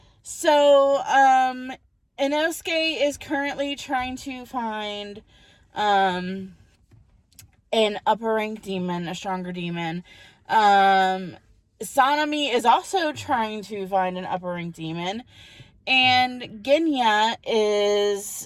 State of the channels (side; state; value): both; identical; correlation 1.00